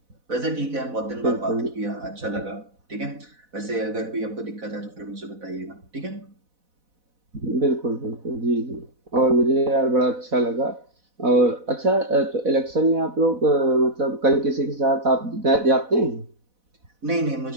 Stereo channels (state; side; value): late; left; 4.1 ms